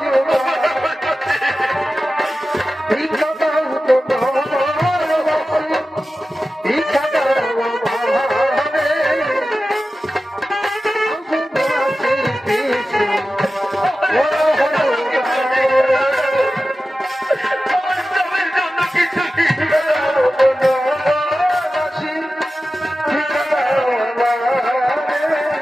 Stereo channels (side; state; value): both; normal; correlation 0.94